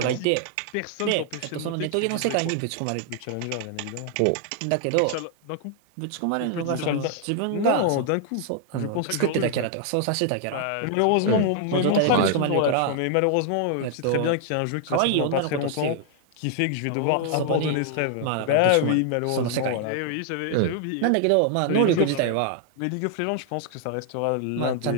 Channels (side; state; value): both; different; correlation 0.00